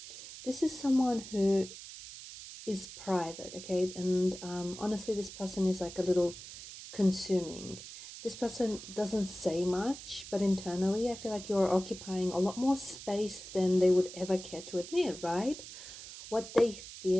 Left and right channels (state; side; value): noise; right; hiss, 13 dB below the sound